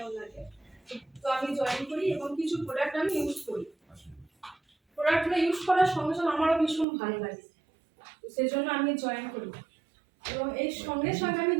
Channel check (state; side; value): drops out; left; at 6.9 s